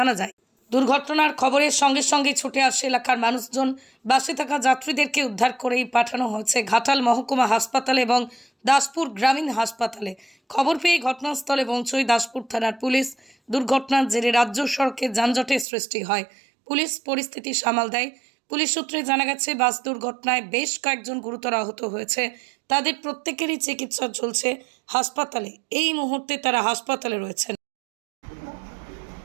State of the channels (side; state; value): left; drops out; at 15.7 s